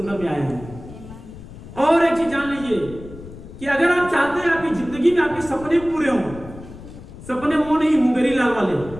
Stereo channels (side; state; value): left; noise; rumble, 15 dB below the sound